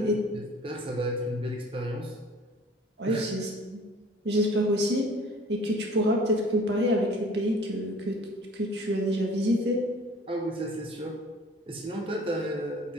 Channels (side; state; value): both; normal; correlation 0.49